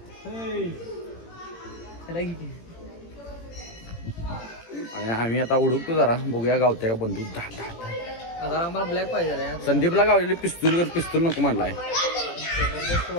आणि आम्ही आता उडकतो जरा, बघूया गावते का बंदूक. आता आम्हाला ब्लॅक पाहिजे. संदीपला गावलेली पिस्तूल नको म्हणलाय.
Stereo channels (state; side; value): late; right; 18 ms